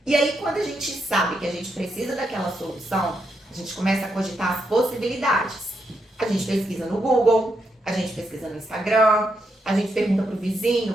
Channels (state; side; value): normal; both; correlation 0.81